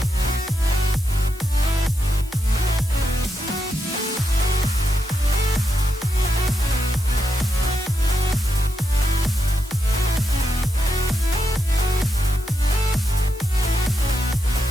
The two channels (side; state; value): both; normal; correlation 0.84